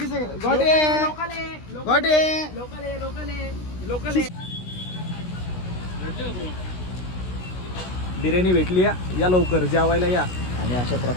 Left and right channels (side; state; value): right; late; 16 ms